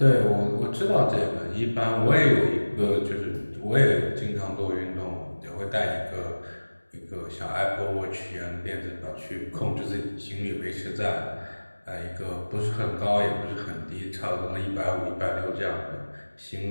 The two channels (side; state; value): both; inverted; correlation -1.00